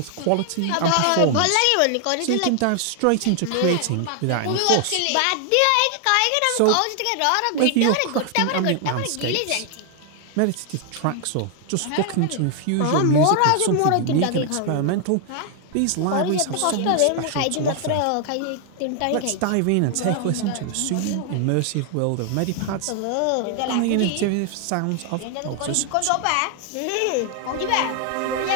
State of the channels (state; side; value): different; both; correlation 0.00